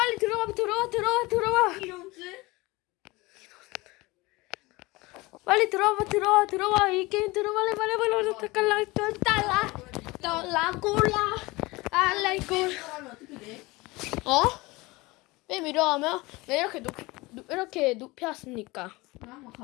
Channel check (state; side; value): quieter; right; 22.4 dB